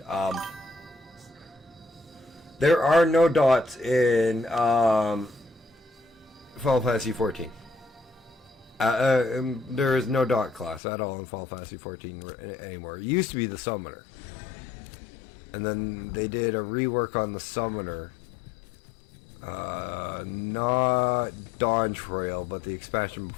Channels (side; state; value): right; drops out; at 10.8 s